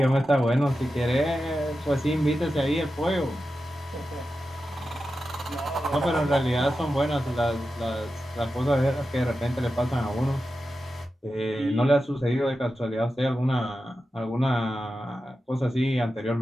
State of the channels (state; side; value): normal; both; correlation 0.91